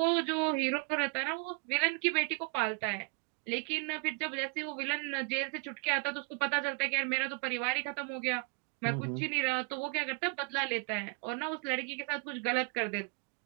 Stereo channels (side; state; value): left; quieter; 33.7 dB